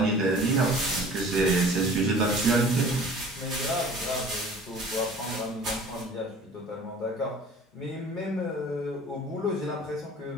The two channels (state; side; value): normal; both; correlation 0.46